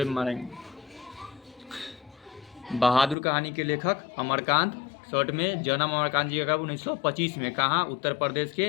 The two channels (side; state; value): right; drops out; at 3.2 s